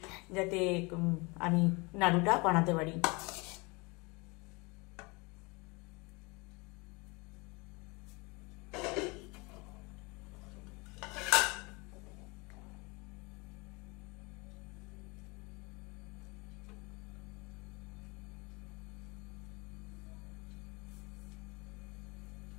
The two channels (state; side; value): quieter; right; 27.3 dB